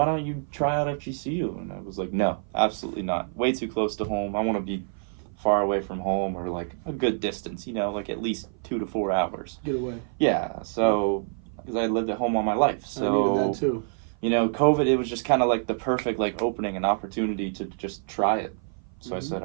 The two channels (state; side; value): silent; left; 55 dB below the other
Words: don't you try out FGCU? And I was like, no, absolutely not. Way too close to home. I want to be far away from home, or like a good distance, like at least 2 to 4 hours. Get away. Yeah. So, because I lived at home all my life. So, I needed that too. COVID, it was just kind of like the perfect like opening and opportunity to just try it. So I said,